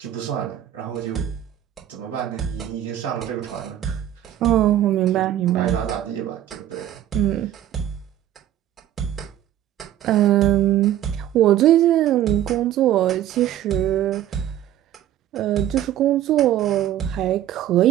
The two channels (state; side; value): quieter; left; 11.9 dB